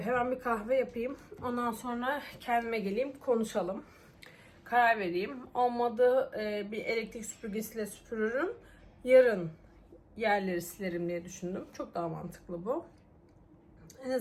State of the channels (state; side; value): identical; both; correlation 1.00